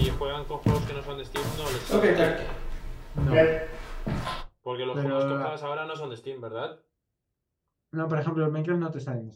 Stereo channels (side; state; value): both; identical; correlation 1.00